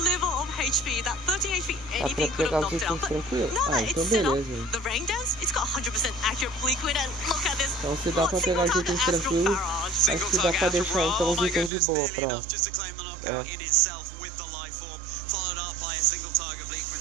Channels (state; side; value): drops out; left; at 11.7 s